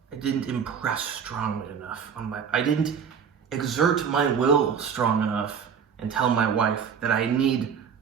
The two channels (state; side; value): quieter; left; 7.1 dB